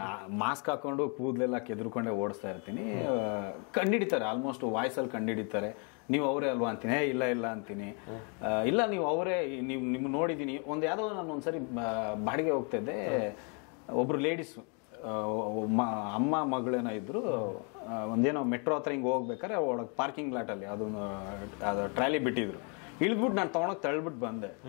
ಮಾಸ್ಕ್ ಹಾಕೊಂಡು ಕೂದಲೆಲ್ಲ ಕೆದ್ರುಕೊಂಡೇ ಓಡಿಸ್ತಾ ಇರ್ತೀನಿ. ಕಂಡಿಡಿತಾರೆ, ಆಲ್ಮೋಸ್ಟ್ ವಾಯ್ಸಲ್ಲಿ ಕಂಡಿಡಿತಾರೆ. ನೀವು ಅವರೇ ಅಲ್ವಾ ಅಂತೀನಿ, ಇಲ್ಲ ಇಲ್ಲ ಅಂತೀನಿ. ಇಲ್ಲ ನೀವು ಅವರೇ, ನಿಮ್ಗೆ ನೋಡಿದ್ದೀನಿ. ಯಾವುದೋ ನಾನು ಒಂದ್ಸರಿ ಬಾಡಿಗೆ ಹೋಗ್ತಾ ಇದ್ದೆ, ಒಬ್ರು ಲೇಡೀಸು ಅಮ್ಮ ಮಗಳೇನೋ ಇದ್ರು, ಒಂದೇನೋ ಮೆಟ್ರೋ ಹತ್ರ ಹಿಂಗೆ ಹೋಗ್ಬೇಕಾರೆ ಒಳಗೆ ಪಾರ್ಕಿಂಗ್ ಲಾಟಲ್ಲಿ ಅದು ಟ್ರಾಲಿ ಬಿಟ್ಟಿದ್ರು. ಇಳಿದ್ಬಿಟ್ಟು ನಾನು ತೊಗೊಂಡೋಗಿ ತಳ್ಬಿಟ್ಟು ಬಂದೆ.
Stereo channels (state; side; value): quieter; right; 36.5 dB